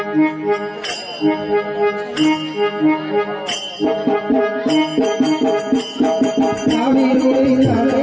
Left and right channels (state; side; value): identical; both; correlation 1.00